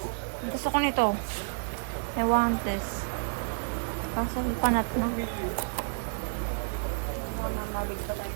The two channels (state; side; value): silent; left; digital silence